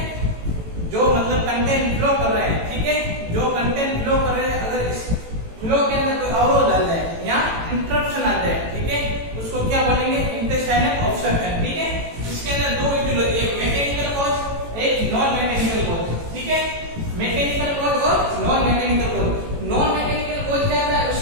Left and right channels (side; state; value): left; late; 18 ms